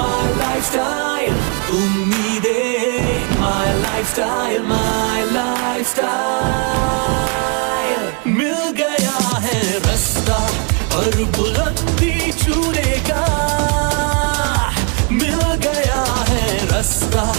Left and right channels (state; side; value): quieter; left; 36.2 dB